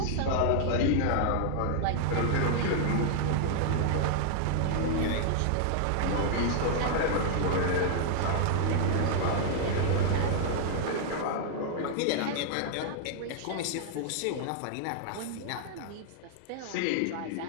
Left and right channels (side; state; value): both; different; correlation 0.00